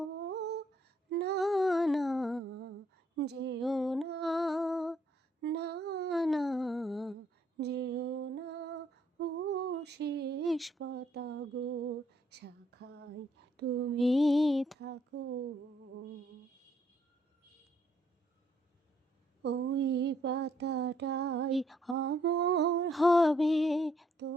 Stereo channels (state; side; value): normal; both; correlation 0.69